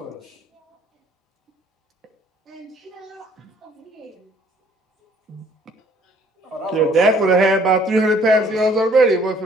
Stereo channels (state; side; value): normal; both; correlation 0.59